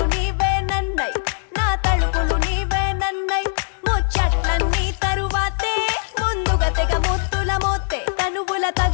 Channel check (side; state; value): right; silent; digital silence